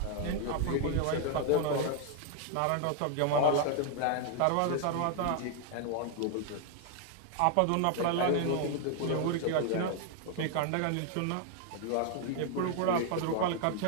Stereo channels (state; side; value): different; both; correlation 0.00